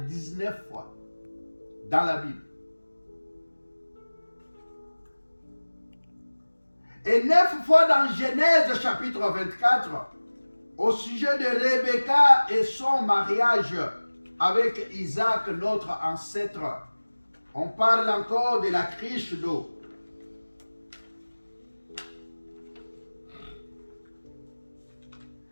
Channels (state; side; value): inverted; both; correlation -1.00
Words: 19 fois dans la Bible. Et 9 fois dans Genèse chapitre 24, au sujet de Rebecca et son mariage avec Isaac, notre ancêtre. On parle encore de la cruche d'eau.